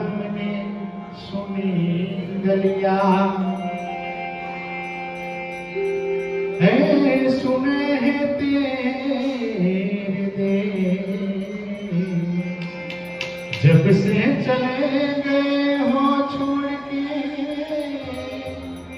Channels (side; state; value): both; identical; correlation 1.00